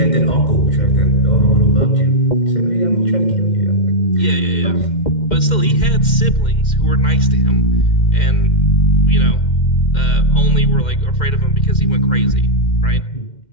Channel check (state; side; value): late; right; 2.1 ms